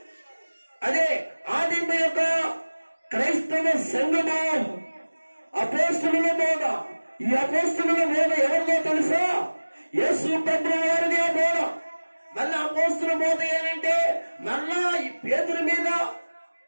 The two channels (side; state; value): both; inverted; correlation -1.00